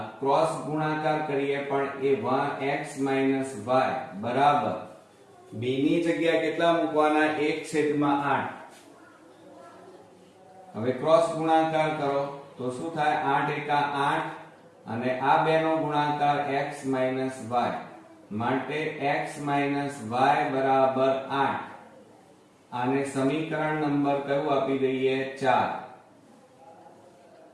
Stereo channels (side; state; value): both; identical; correlation 1.00